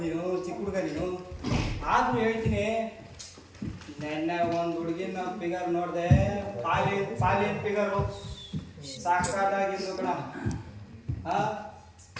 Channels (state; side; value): identical; both; correlation 1.00